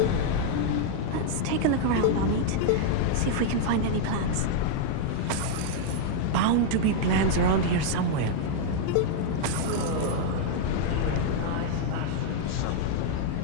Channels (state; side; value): different; both; correlation -0.01